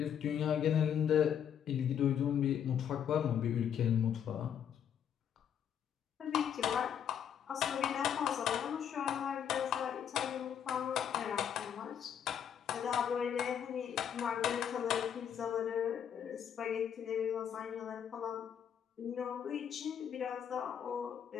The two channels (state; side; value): quieter; right; 8.8 dB